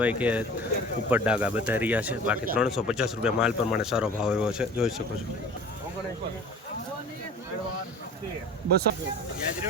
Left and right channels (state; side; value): normal; both; correlation 0.42